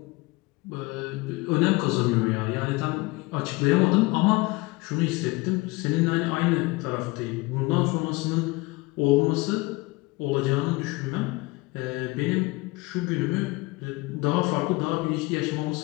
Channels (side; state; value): right; quieter; 23.6 dB